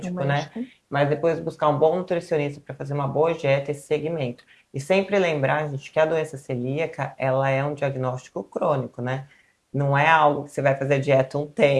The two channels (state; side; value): identical; both; correlation 1.00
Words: né? médico. Mas depois buscar um bom nutricionista para fazer uma boa dieta, esse segmento. E sempre lembrar, gente, que a doença celíaca, ela é um diagnóstico crônico, né? Não é algo que você vai fazer dieta um